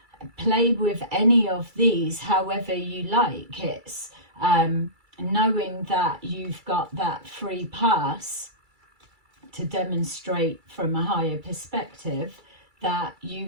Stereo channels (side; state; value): left; late; 2.3 ms